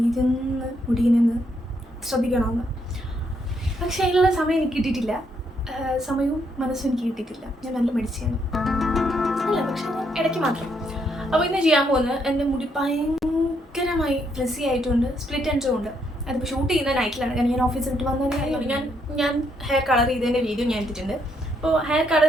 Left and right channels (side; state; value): both; normal; correlation 0.74